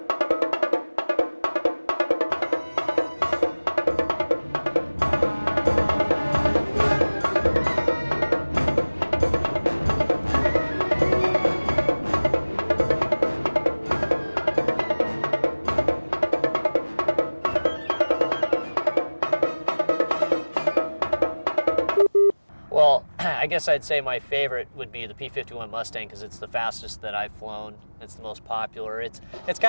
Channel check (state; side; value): inverted; both; correlation -1.00